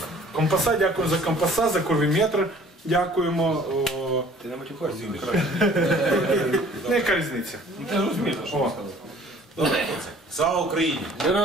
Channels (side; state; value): both; normal; correlation 0.52